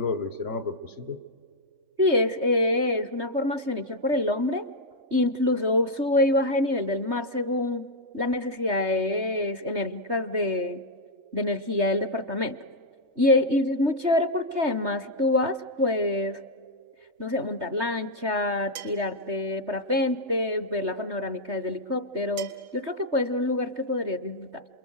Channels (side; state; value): left; late; 3.2 ms